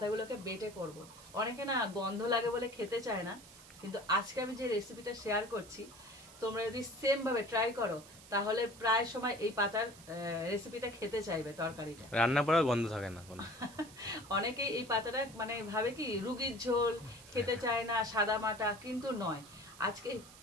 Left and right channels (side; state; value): right; noise; hiss, 19 dB below the sound